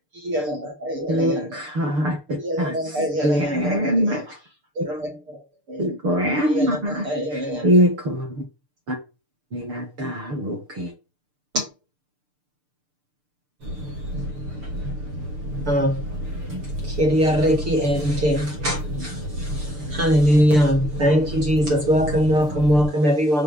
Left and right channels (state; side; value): late; left; 6.7 ms